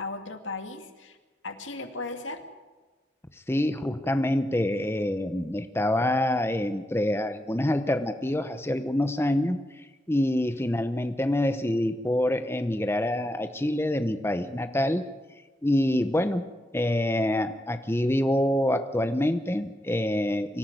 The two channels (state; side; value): normal; both; correlation 0.84